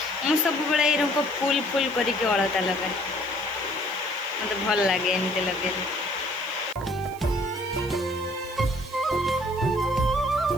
सब बड़े ये फुल फुल करके अलता लगाए, मत भल लगे एमती लगे।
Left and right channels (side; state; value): right; noise; hiss, 20 dB below the sound